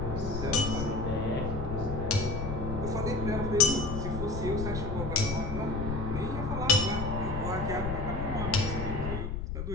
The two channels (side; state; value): left; noise; rumble, 4 dB below the sound